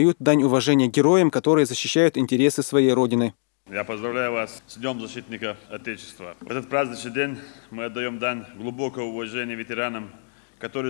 дань уважения героям, которые защищают интересы своей родины. Я поздравляю вас с Днем защитника Отечества. В этот праздничный день мы отдаем дань глубокого уважения ветеранам, которые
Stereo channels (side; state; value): right; silent; digital silence